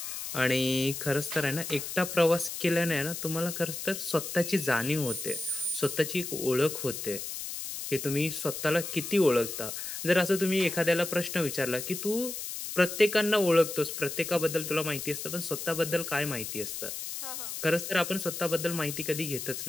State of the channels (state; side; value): noise; left; hiss, 6 dB below the sound